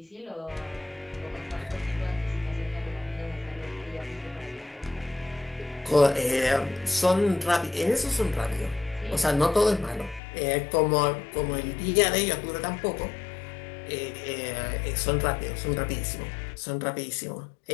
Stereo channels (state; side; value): drops out; right; at 10.2 s